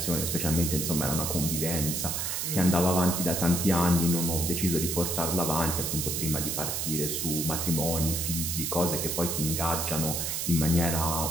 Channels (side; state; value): right; noise; hiss, 1 dB below the sound